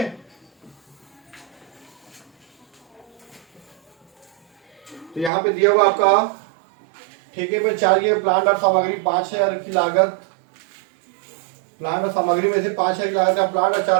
तो यहाँ पे दिया हुआ आपका ठेके पे चाहिए प्लांट और सामग्री 5,000 की लागत, प्लांट और सामग्री में से 5,000 की लागत का प्लांट और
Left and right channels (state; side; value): drops out; left; at 5.3 s